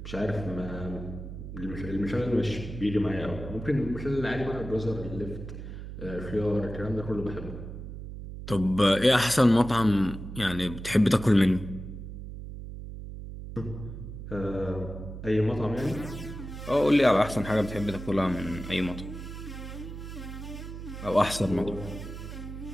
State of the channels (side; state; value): right; noise; hum, 10 dB below the sound